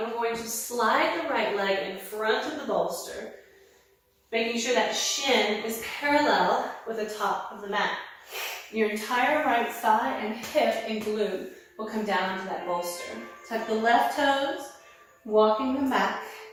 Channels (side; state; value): both; identical; correlation 1.00